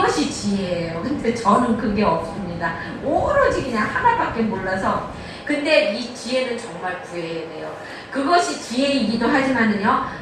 지혜예요. 근데 저는 그게 없습니다. 오로지 그냥 하나밖에 몰라서. 근데 이 지혜는 정말 구해야 돼요. 그것이 지혜이기도 하지만은요,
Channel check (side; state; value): both; identical; correlation 1.00